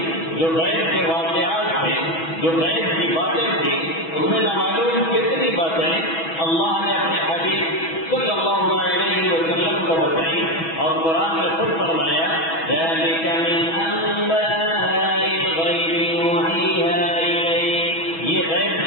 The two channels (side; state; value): right; late; 6.1 ms